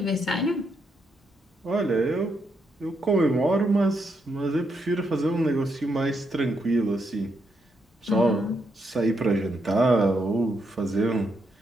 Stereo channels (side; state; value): both; normal; correlation 0.79